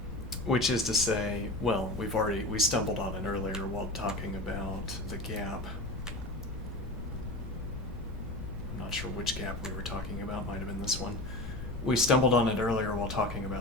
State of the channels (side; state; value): left; noise; rumble, 8 dB below the sound